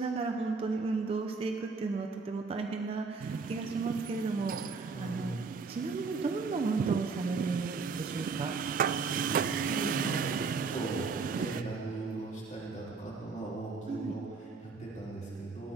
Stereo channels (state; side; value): quieter; left; 4.6 dB